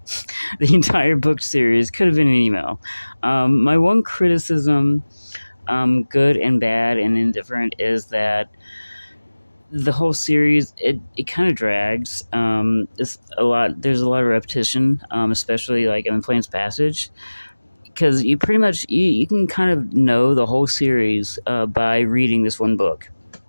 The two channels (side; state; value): both; inverted; correlation -1.00